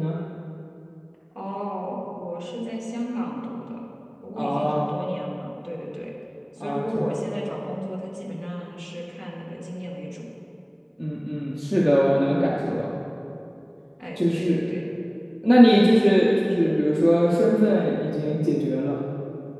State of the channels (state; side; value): identical; both; correlation 1.00